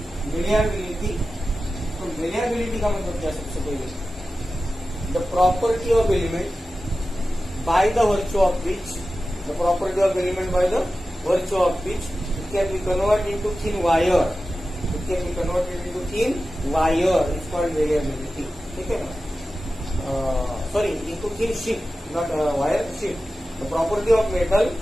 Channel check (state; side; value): normal; both; correlation 0.94